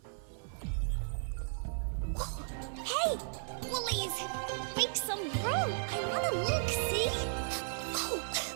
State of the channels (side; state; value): left; silent; digital silence